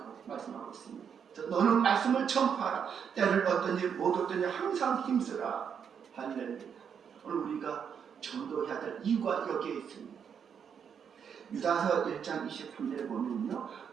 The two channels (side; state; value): left; quieter; 7.4 dB